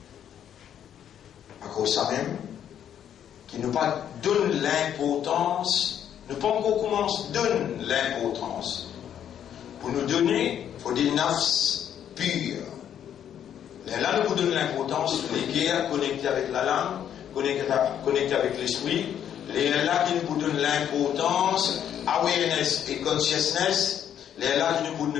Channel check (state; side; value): quieter; right; 9.6 dB